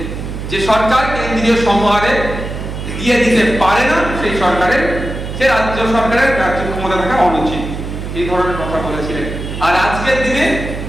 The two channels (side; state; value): right; noise; hum, 7 dB below the sound